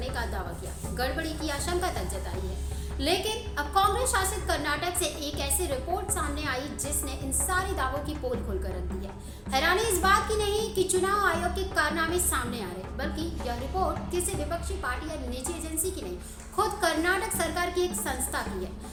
का दावा किया, गड़बड़ी की आशंका तक जताई है। लेकिन अब कांग्रेस शासित कर्नाटक से एक ऐसी रिपोर्ट सामने आई जिसने इन सारे दावों की पोल खोलकर रख दी है। हैरानी इस बात की नहीं कि चुनाव आयोग के कारनामे सामने आ रहे, बल्कि यह रिपोर्ट किसी विपक्षी पार्टी या निजी एजेंसी की नहीं, खुद कर्नाटक सरकार की एक संस्था की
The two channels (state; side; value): identical; both; correlation 1.00